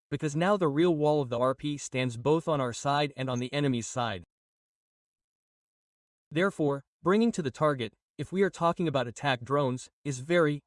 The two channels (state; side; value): identical; both; correlation 1.00